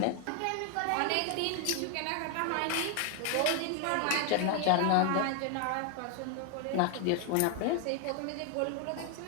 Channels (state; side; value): different; both; correlation 0.00